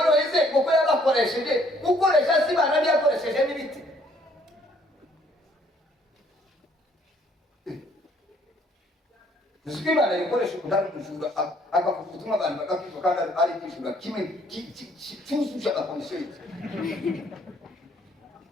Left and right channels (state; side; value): normal; both; correlation 0.63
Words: yize kuko yabakoresheje gukoresha si Imana yakoresheje n'ibiti uziko Imana ikoresha utari umujura akavuga ubutumwa abantu bagakizwa kandi ari ikijura kimwe cyuzuje amakondisiyo yose.